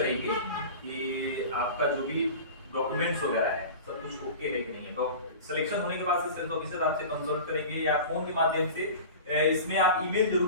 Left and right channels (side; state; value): both; inverted; correlation -0.35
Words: कि आपका जो भी डॉक्यूमेंट्स वगैरह है सब कुछ ओके है कि नहीं है। तो सिलेक्शन होने के बाद से सेल्स ऑफिसर आपसे कंसल्ट करेंगे या फोन के माध्यम से। इसमें आप ईमेल